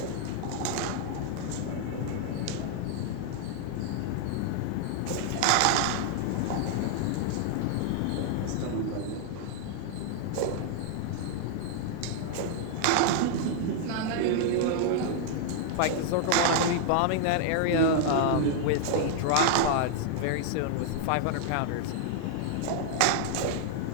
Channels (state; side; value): different; both; correlation 0.00